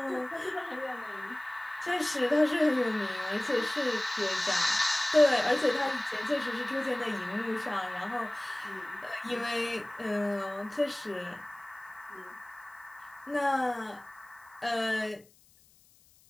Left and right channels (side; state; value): left; noise; hiss, 29 dB below the sound